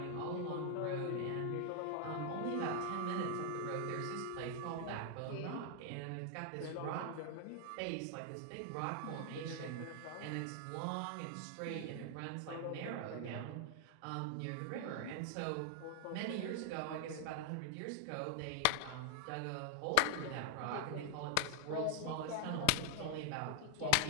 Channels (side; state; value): both; different; correlation 0.00